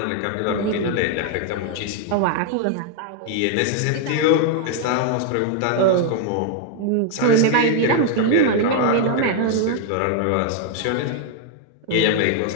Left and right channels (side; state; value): both; different; correlation 0.00